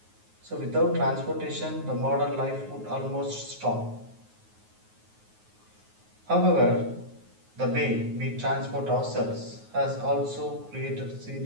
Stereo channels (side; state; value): left; late; 9.4 ms